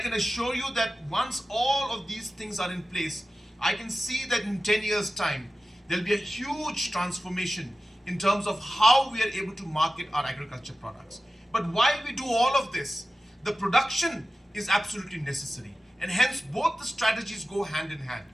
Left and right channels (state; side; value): normal; both; correlation 0.94